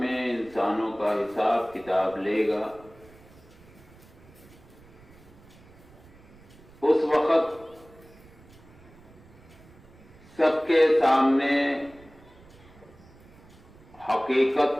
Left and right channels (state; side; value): noise; right; rumble, 24 dB below the sound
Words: انسانوں کا حساب کتاب لے گا، اس وقت سب کے سامنے